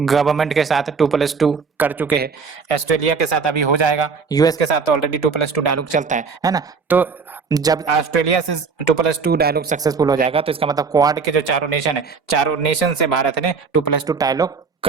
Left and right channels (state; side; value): quieter; left; 5.2 dB